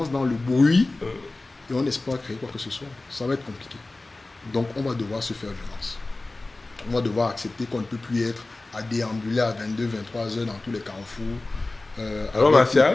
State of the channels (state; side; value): quieter; right; 3.1 dB